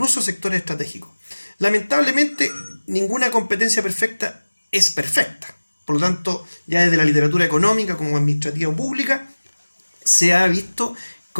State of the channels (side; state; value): both; inverted; correlation -1.00